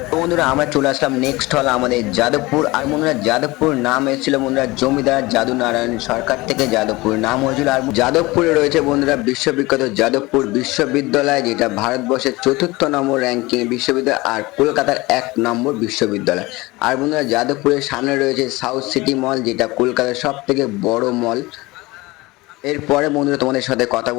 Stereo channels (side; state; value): right; quieter; 21.5 dB